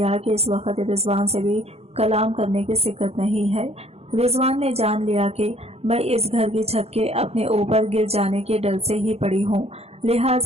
कि इस वक्त रिजवान से भी कलाम करने की सिक्कत नहीं है। रिजवान ने जान लिया कि मैं इस घर की छत के अपने ऊपर गिर जाने के डर से ही पड़ी हूँ,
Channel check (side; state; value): left; late; 0.30 ms